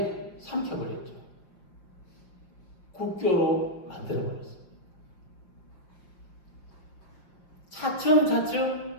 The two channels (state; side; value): late; right; 5.7 ms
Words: 삼켜버렸죠. 국교로 만들어버렸습니다.